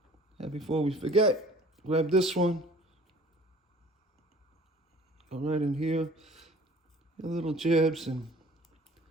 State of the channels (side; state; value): both; normal; correlation 0.49